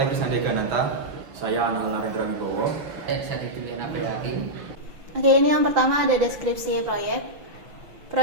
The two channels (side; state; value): left; late; 5.9 ms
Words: Krisna Degananta. Saya Anal Narendra Wibowo. Saya Tituliana Peyakin. Oke, ini yang pertama ada deskripsi proyek.